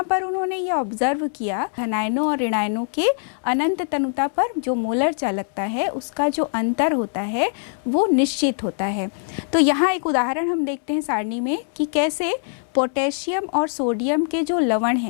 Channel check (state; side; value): silent; right; 64 dB below the other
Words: पर उन्होंने ये ऑब्जर्व किया धनायनों और ऋणायनों के अनंत तनुता पर जो मोलर चालकता है उसका जो अंतर होता है वो निश्चित होता है। तो यहाँ एक उदाहरण हम देखते हैं सारणी में कि कैसे पोटेशियम और सोडियम के जो लवण